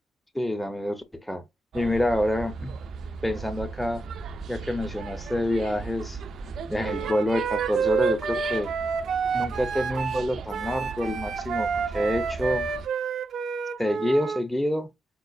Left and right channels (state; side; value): normal; both; correlation 0.86